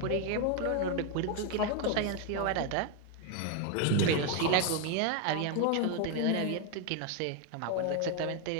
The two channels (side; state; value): both; different; correlation 0.01